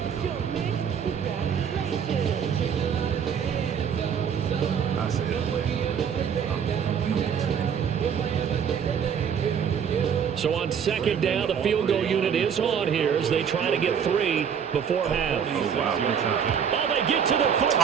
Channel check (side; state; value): left; quieter; 7.6 dB